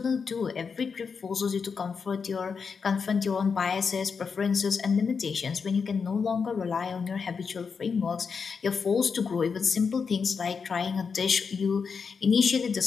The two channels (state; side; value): quieter; right; 5.6 dB